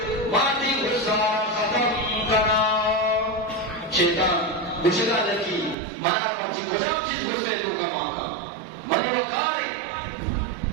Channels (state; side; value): drops out; left; at 5.8 s